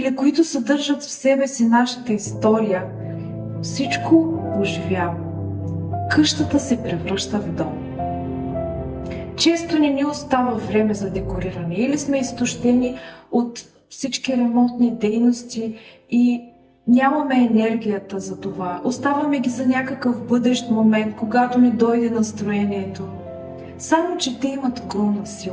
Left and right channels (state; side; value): identical; both; correlation 1.00